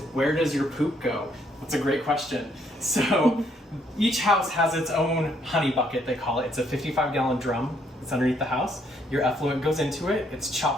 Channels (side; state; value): both; normal; correlation 0.70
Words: where does your poop go? That's a great question. So each house has its own honey bucket, they call it. It's a 55-gallon drum. It's underneath the house. Your effluent goes into it. It's